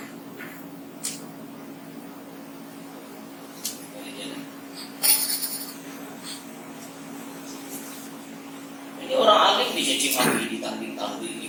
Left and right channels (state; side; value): identical; both; correlation 1.00